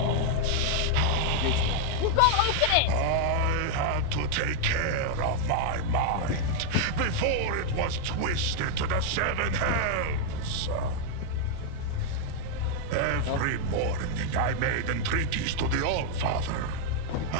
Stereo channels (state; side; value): different; both; correlation 0.00